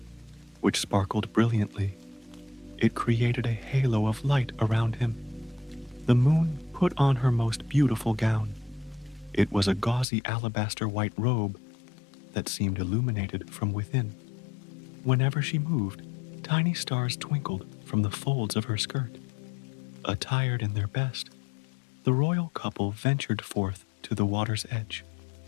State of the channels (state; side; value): drops out; right; at 10.1 s